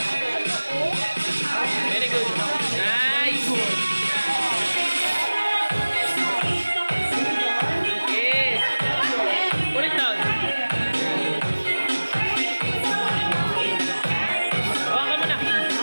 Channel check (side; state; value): both; inverted; correlation -1.00